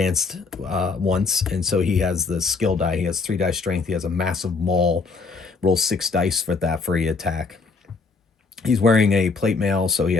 once, and so he has the skill die. He has 3 die strength. He has a massive maul. Rolls 6 dice for that for a attack. He's wearing a plate mail, so he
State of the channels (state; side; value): quieter; right; 4.4 dB